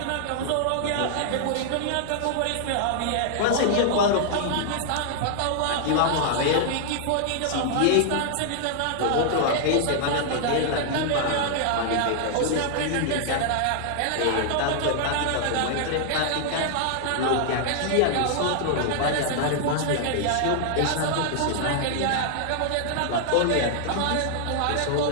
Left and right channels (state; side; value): different; both; correlation -0.01